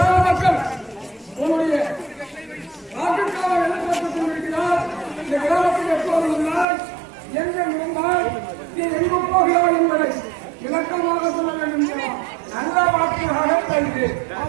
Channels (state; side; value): drops out; left; at 6.7 s